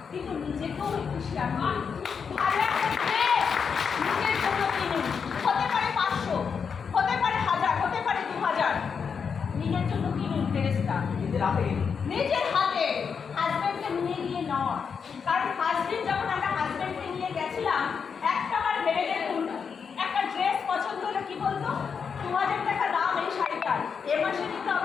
কিন্তু নিজেকেও একটু শেয়ার করুন। ভালো একটা ড্রেস নিজের জন্য কিনুন, হতে পারে 500, হতে পারে 1000, হতে পারে 2000, নিজের জন্য কিনুন ড্রেসটা নিজের হাতে। হাজব্যান্ডকে নিয়ে গিয়ে নয়, কারণ হাজব্যান্ড যখন আমরা হাজব্যান্ডকে নিয়ে গেছিলাম একটাবার ভেবে দেখুন, একটা ড্রেস পছন্দ হলে কি বলতো, 2000 টাকা দাম এই শাড়িটার, এ মাসে নিতে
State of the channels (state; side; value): quieter; right; 6.2 dB